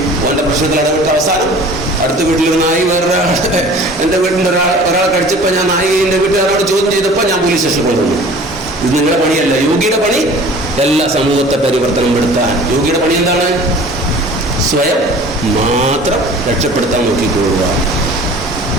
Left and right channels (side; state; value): both; normal; correlation 0.45